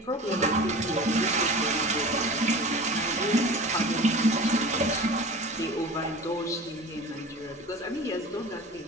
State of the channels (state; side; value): normal; both; correlation 0.37